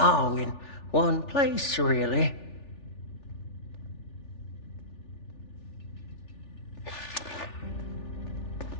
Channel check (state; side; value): late; right; 3.4 ms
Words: in one place, really.